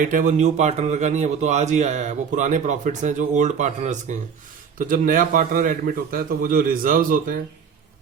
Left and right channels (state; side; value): quieter; left; 6.7 dB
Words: है वो न्यू पार्टनर का नहीं है, वो तो आज ही आया है, वो पुराने प्रॉफिट्स हैं जो ओल्ड पार्टनर्स के हैं। तो जब नया पार्टनर एडमिट होता है तो वो जो रिजर्व्स होते हैं